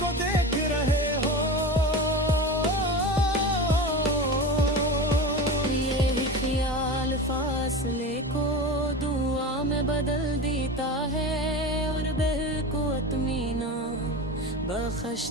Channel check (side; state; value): both; normal; correlation 0.28